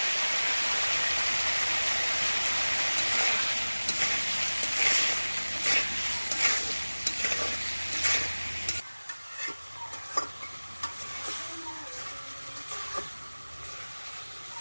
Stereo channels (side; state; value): both; inverted; correlation -1.00